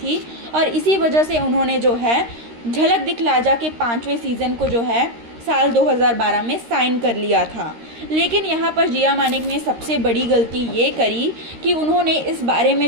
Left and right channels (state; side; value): late; left; 13 ms